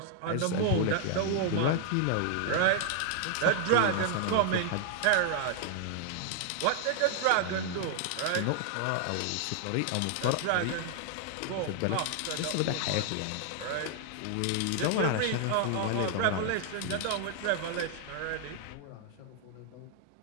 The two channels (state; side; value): different; both; correlation 0.00